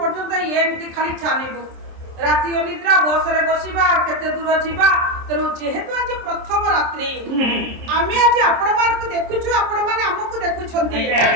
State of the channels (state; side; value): late; left; 26 ms